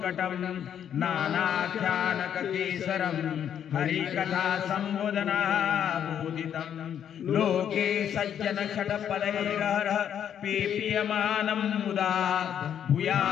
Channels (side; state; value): right; quieter; 9.1 dB